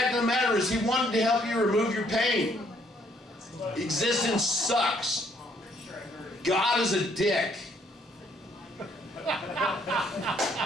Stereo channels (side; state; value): both; normal; correlation 0.67